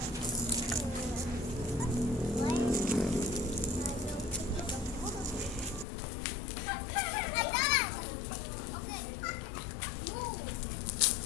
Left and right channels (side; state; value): right; drops out; at 5.9 s